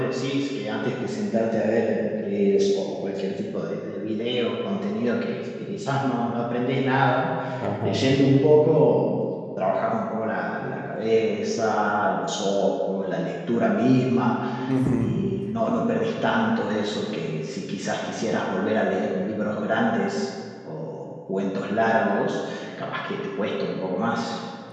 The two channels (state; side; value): identical; both; correlation 1.00